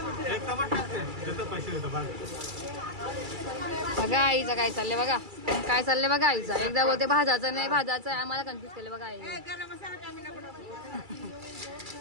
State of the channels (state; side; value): late; left; 2.3 ms